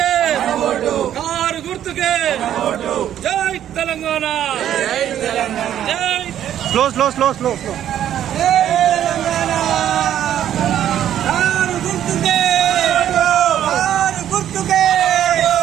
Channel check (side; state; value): left; quieter; 10.9 dB